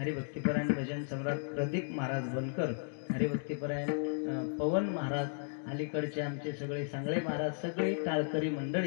भजन सम्राट प्रदीप महाराज बनकर, हरिभक्तीपरायण पवन महाराज, अलीकडचे आमचे सगळे सांगळे महाराज, सगळे टाळकरी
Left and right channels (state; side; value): silent; right; digital silence